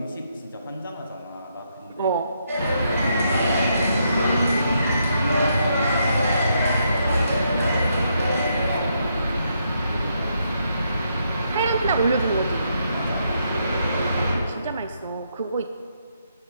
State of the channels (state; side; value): inverted; both; correlation -0.77